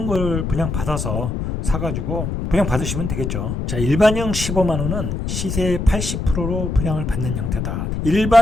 걸 그냥 받아서 사가지고 분양 받으시면 되겠죠. 자, 일반형 15만 원은 시세의 80%로 분양을 받는 형태다.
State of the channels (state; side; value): noise; left; rumble, 3 dB below the sound